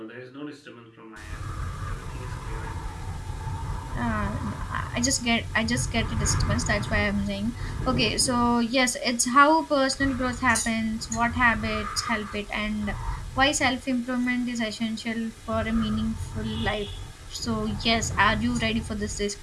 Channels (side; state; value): both; identical; correlation 1.00